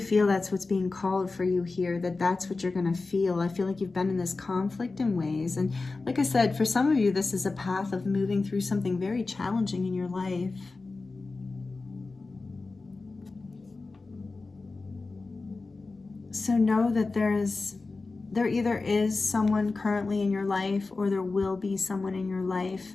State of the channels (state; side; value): quieter; right; 3.7 dB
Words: that's what's being called for you here, that's what you're going to feel. I feel like you've been in this conflict in ways. And like I said, for some of you, this is a path of moving through something very challenging in your life. So know that there either is someone currently in your life, or there will be someone in your life